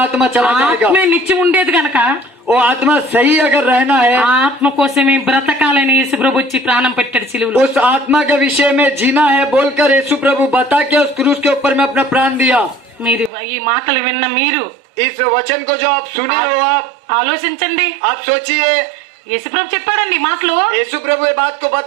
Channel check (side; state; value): left; drops out; at 13.3 s